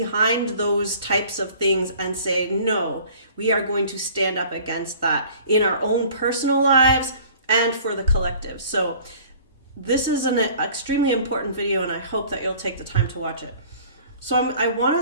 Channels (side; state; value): both; inverted; correlation -0.49